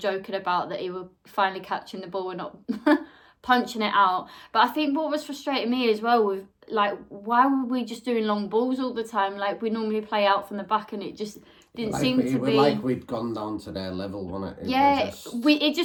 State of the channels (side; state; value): both; identical; correlation 1.00